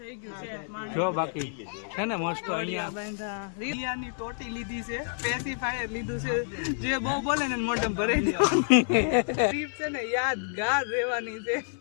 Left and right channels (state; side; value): silent; right; 59 dB below the other